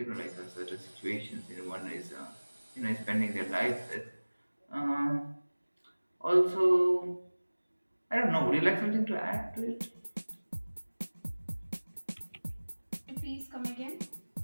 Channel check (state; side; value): inverted; both; correlation -1.00